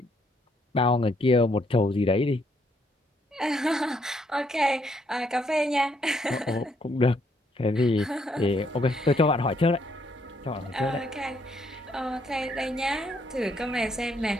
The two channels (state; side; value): normal; both; correlation 0.72